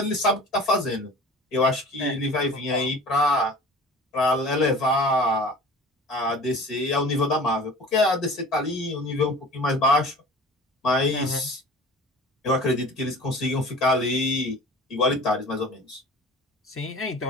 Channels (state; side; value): normal; both; correlation 0.42